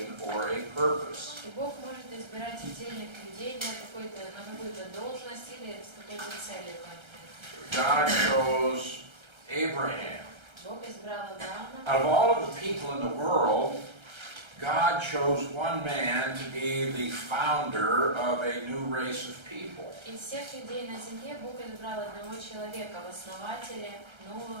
or a purpose. И Бог может избирать отдельных людей на какую-то должность или с какой-то целью конкретной. God chose Abraham. Бог избрал Авраама. Out of all of the people in the world, God chose one man to be the founder of a new race of people. Из всех людей на земле Бог избрал одного человека в основателе нового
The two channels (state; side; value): late; left; 1.3 ms